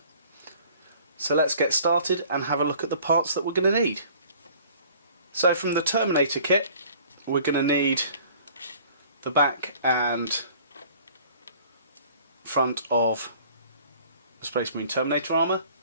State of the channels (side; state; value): both; inverted; correlation -0.51